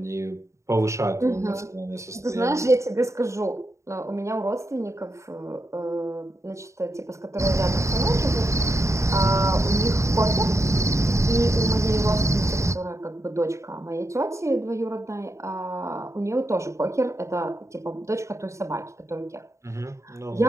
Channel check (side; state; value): left; late; 0.14 ms